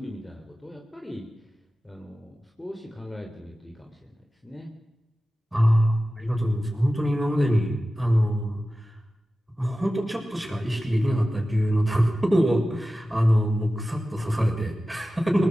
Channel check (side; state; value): both; normal; correlation 0.95